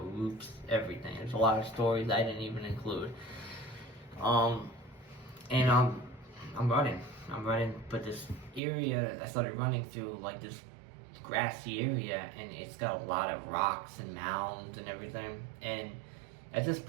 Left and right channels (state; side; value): drops out; left; at 8.6 s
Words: roofs, everything. There's a lot of stories I didn't even include. I'm running, but this area I started running through, like this grassy area, and it's got a lot of rocks and mounds and everything. And at this